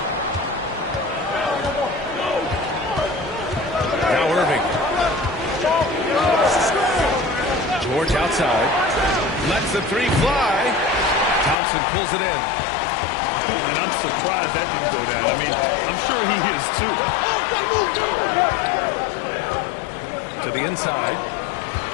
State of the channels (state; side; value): drops out; right; at 11.6 s